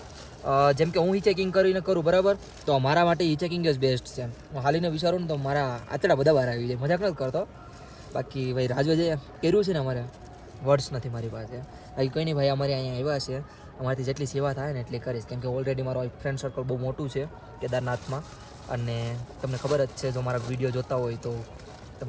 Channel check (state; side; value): identical; both; correlation 1.00